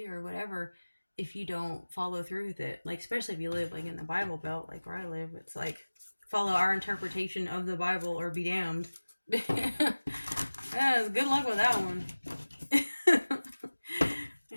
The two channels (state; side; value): inverted; both; correlation -1.00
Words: or whatever, if you don't follow through with it. Like, especially if you live like in the Bible Belt, like where I live, it's like follow our interpretation of the Bible or be damned. Yeah, good luck with that one.